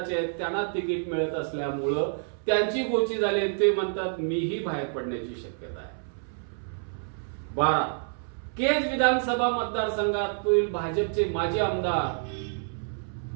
आहेत, त्यांना तिकीट मिळत असल्यामुळं त्यांची गोची झाली, ते म्हणतात मीही बाहेर पडण्याची शक्यता आहे. 12, केज विधानसभा मतदारसंघातील भाजपचे माजी आमदार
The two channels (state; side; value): silent; left; 59 dB below the other